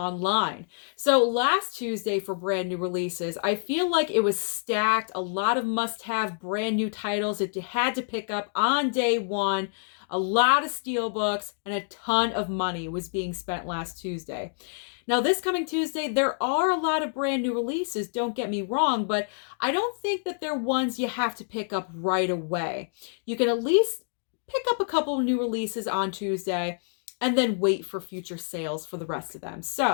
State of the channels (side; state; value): right; silent; digital silence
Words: So last Tuesday for brand new releases, I feel like it was stacked. A lot of must-have brand new titles that you had to pick up on day one. A lot of steelbooks and a ton of money was being spent last Tuesday. Now, this coming Tuesday, there are a lot of brand new releases, don't get me wrong, but I don't think that they're ones you have to pick up right away. You can at least pick up a couple of new releases on Tuesday and then wait for future sales for the rest of them.